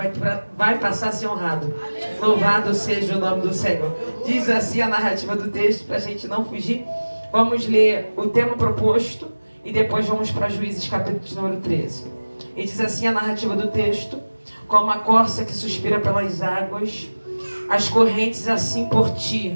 passar a ser honrado. Louvado seja o nome do Senhor. Diz assim a narrativa do texto, para a gente não fugir. Vamos ler o tema proposto e depois vamos para Juízes capítulo número 13. E diz assim a narrativa do texto: como a corça que suspira pelas águas, as correntes assim por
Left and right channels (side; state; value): both; inverted; correlation -1.00